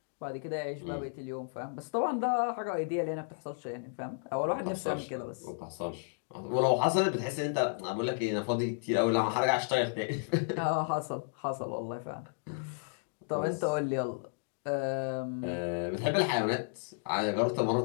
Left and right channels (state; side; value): silent; right; digital silence